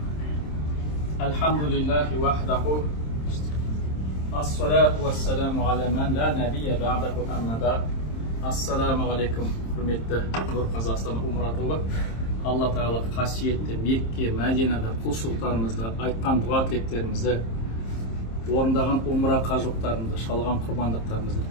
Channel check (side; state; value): right; late; 26 ms